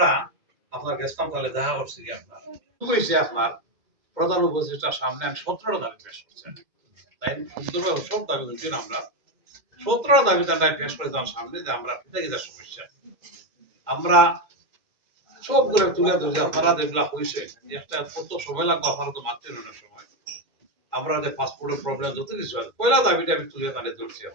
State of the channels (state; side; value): late; left; 2.1 ms